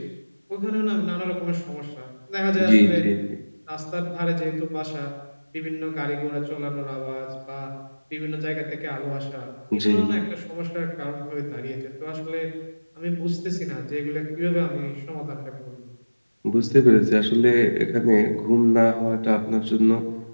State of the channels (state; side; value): inverted; both; correlation -1.00